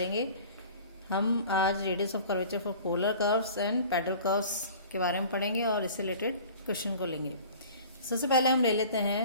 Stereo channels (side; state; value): both; inverted; correlation -0.44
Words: हम आज radius of curvature for polar curves and pedal curves के बारे में पढ़ेंगे और इससे रिलेटेड क्वेश्चन को लेंगे। सबसे पहले हम ले लेते